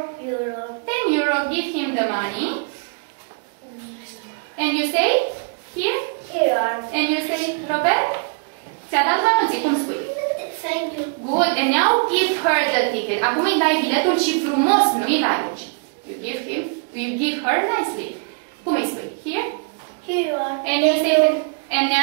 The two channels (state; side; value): quieter; left; 37.5 dB